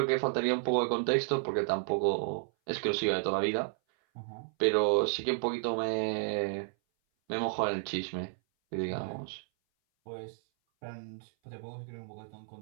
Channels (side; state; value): left; silent; 56 dB below the other